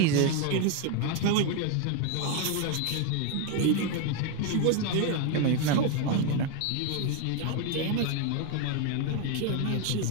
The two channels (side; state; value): both; different; correlation 0.01